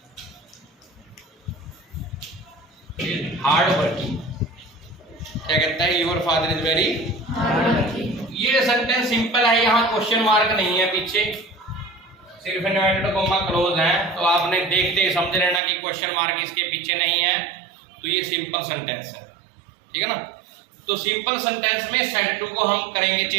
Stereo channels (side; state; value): left; drops out; at 15.6 s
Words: Hard working क्या कहता है? Your father is very hard working. ये सेंटेंस सिंपल है, यहाँ क्वेश्चन मार्क नहीं है पीछे, सिर्फ इन्वर्टेड कॉमा क्लोज है, तो आपने देखते ही समझ लेना कि क्वेश्चन मार्क इसके पीछे नहीं है, तो ये सिंपल सेंटेंस है, ठीक है ना। तो सिंपल सेंटेंस में सेड टू को हम करेंगे